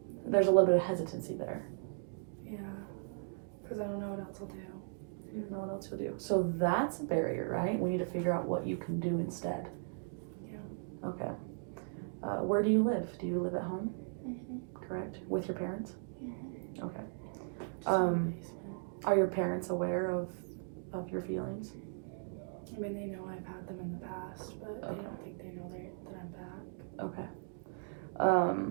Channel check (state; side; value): silent; left; digital silence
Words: There's a little bit of hesitancy there. Yeah, because I don't know what else I'll do. You don't know what else you'll do. So that's a barrier, right? We need to figure out what you can do instead. Yeah. Okay. Where do you live? Do you live at home? Mm-hmm. Correct? With your parents? Mm-hmm. Okay. Are your parents aware of your feelings? They know I've had them in the past, but I don't think they know that I'm back. Okay.